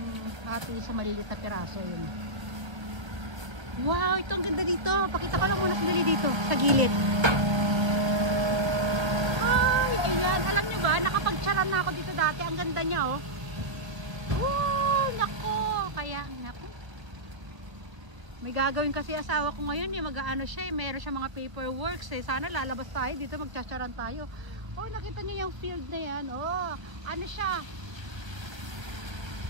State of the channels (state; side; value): late; left; 1.5 ms